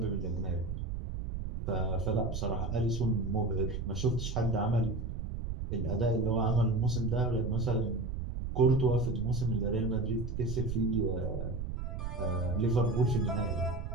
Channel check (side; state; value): right; noise; rumble, 5 dB below the sound